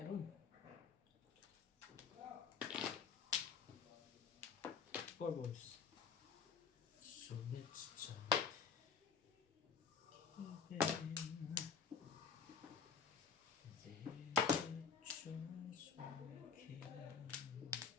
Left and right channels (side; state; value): right; quieter; 5.9 dB